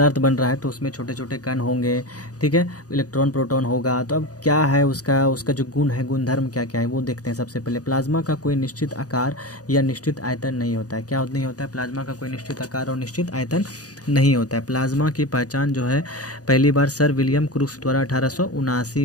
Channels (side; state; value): right; late; 0.67 ms